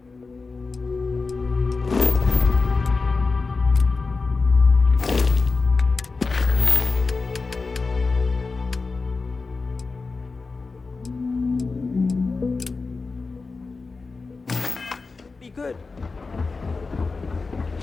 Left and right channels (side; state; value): right; quieter; 4.1 dB